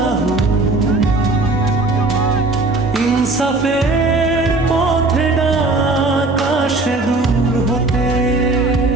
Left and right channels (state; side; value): quieter; left; 3.2 dB